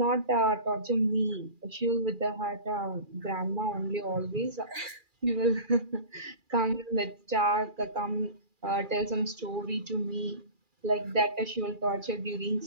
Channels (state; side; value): late; left; 2.4 ms